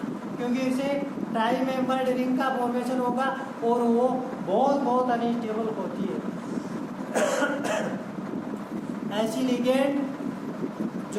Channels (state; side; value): identical; both; correlation 1.00